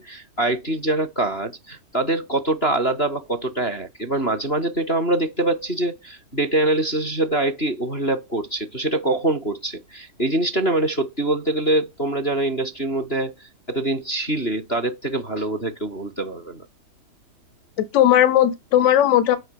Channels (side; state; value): right; late; 2.9 ms